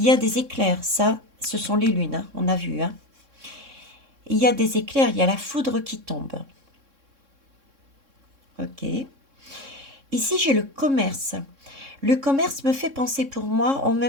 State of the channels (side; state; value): left; late; 3.6 ms